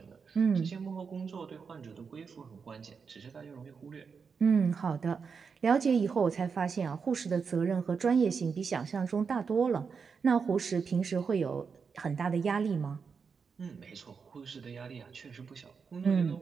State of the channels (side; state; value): left; quieter; 5.7 dB